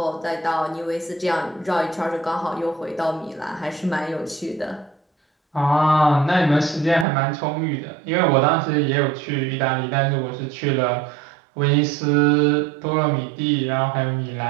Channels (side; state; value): left; drops out; at 7.1 s